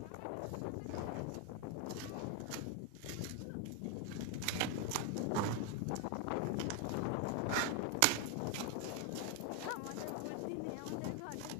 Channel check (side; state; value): both; different; correlation 0.01